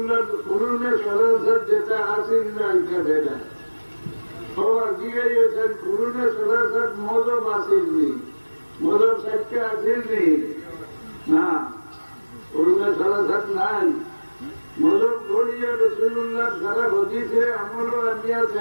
কুরুনে সরাসর যেটা আসেন না এটা বেদাত সবার জিজ্ঞাসেন কুরুনে সরাসর মজব আসেননি মজব সাইটটা আসেননি না কুরুনে সরাসর নাই মজব করিয়া রসুলুল্লাহ সারা হদিসে আমল আনিয়া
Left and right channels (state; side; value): inverted; both; correlation -1.00